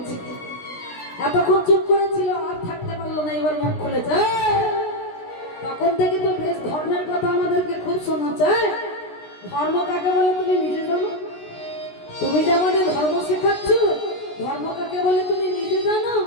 এতক্ষণ চুপ করেছিল আর থাকতে পারলো না, এবার মুখ খুলেছে। তখন থেকে তো বেশ ধর্মের কথা আমাদেরকে খুব শোনাচ্ছে। ধর্ম কাকে বলে তুমি নিজে জানো? তুমি যে আমাদের ধর্ম শেখাচ্ছ, ধর্ম কাকে বলে তুমি নিজে জানো?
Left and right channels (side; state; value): right; late; 16 ms